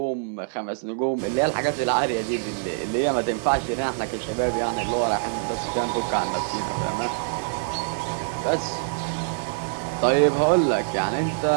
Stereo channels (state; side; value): silent; left; 59 dB below the other